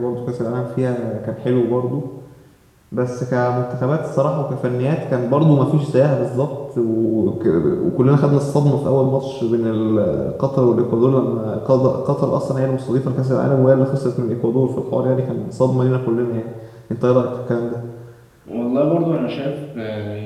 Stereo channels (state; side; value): identical; both; correlation 1.00